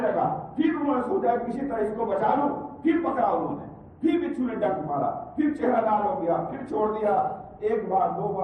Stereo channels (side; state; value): both; identical; correlation 1.00